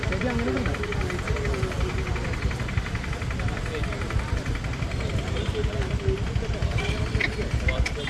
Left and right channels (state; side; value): identical; both; correlation 1.00